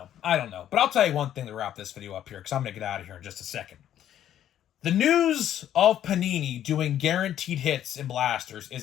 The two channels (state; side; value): quieter; right; 11.0 dB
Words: But I'll tell you one thing to wrap this video up here, because I'm going to get out of here in just a second. The news of Panini doing guaranteed hits in blasters